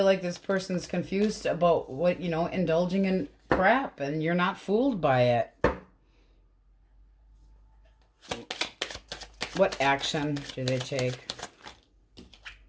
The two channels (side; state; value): both; identical; correlation 1.00